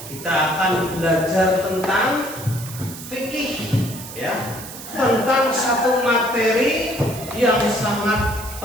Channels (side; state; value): right; noise; hiss, 13 dB below the sound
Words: kita akan belajar tentang fikih, ya, tentang satu materi yang sangat